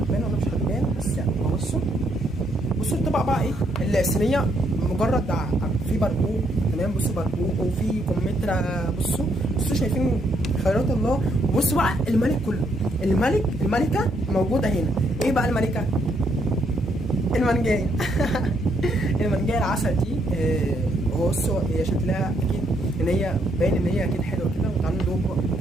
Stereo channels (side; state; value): both; normal; correlation 0.73